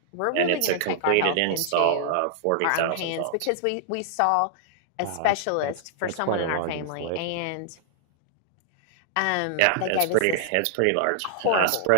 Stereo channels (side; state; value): both; different; correlation -0.01